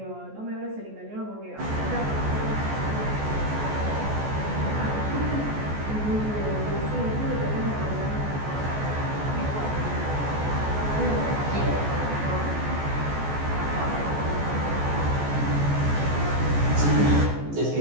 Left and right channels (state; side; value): late; left; 14 ms